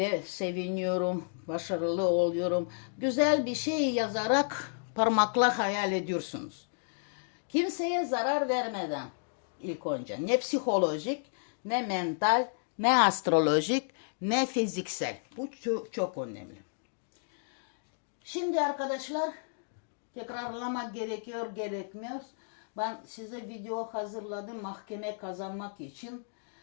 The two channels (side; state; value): right; silent; digital silence